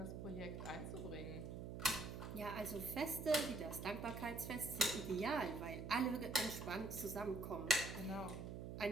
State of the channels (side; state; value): right; noise; hum, 6 dB below the sound